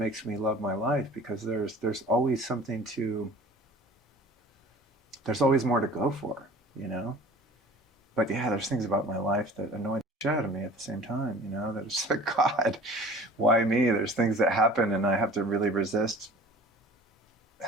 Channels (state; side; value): normal; both; correlation 0.44